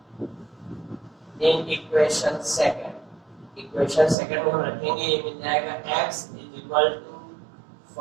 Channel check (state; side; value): drops out; left; at 4.2 s